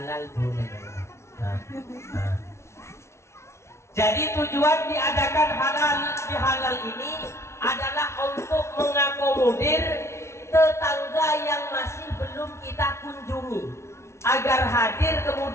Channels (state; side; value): late; right; 0.13 ms